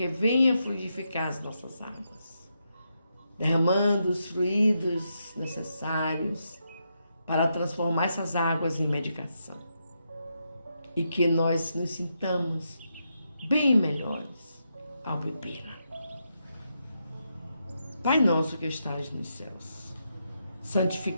venha fluidificar as nossas águas, derramando os fluidos necessários para transformar essas águas em medicação. E que nós nos sintamos bem melhores ao bebê-la. Pai nosso que estás nos céus,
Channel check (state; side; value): inverted; both; correlation -0.83